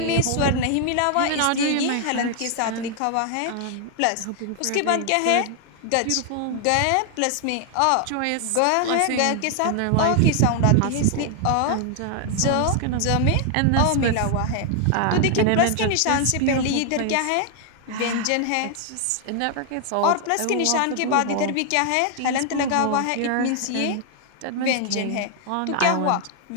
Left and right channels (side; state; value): both; different; correlation 0.00